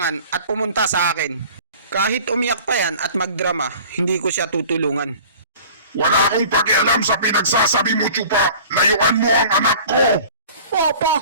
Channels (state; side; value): inverted; both; correlation -0.45